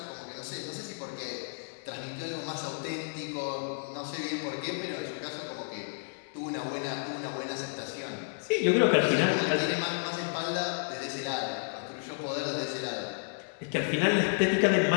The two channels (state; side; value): silent; right; 57 dB below the other